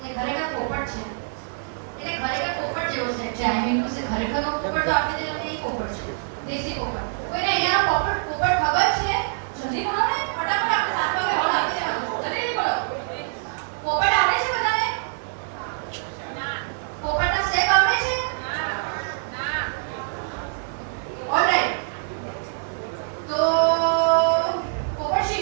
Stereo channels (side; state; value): left; silent; digital silence